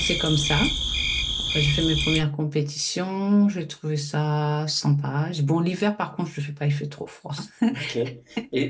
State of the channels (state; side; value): identical; both; correlation 1.00